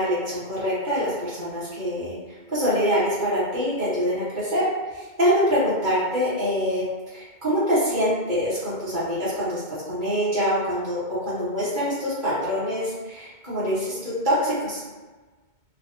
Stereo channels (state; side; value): late; left; 2.2 ms